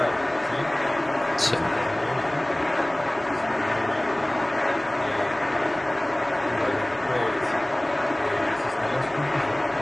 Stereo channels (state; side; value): noise; right; hum, 28 dB below the sound